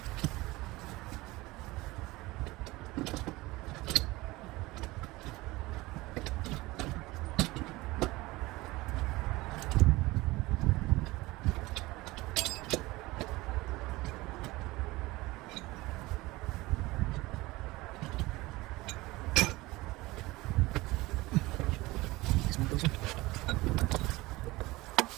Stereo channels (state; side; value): quieter; left; 20.4 dB